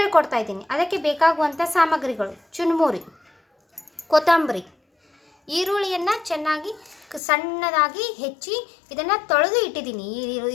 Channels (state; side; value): drops out; right; at 7.2 s